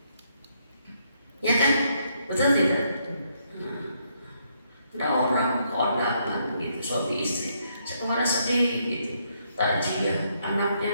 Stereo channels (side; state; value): both; inverted; correlation -0.74